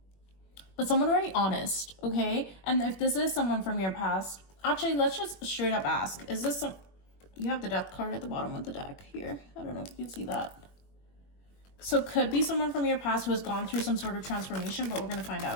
But someone very honest, okay? And if this is someone from your past, actually, let's just straight up ask, is this some... You have the Death card at the bottom of the deck here. I don't know if you can see that. So could be someone from your past who has gone through some sort of transformation, but we're going to find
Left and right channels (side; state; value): right; late; 21 ms